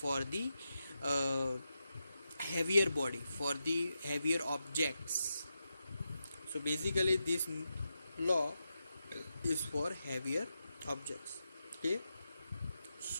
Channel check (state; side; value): inverted; both; correlation -0.88